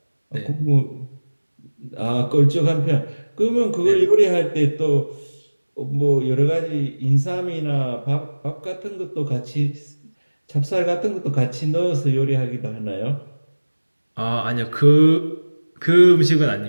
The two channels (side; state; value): both; inverted; correlation -1.00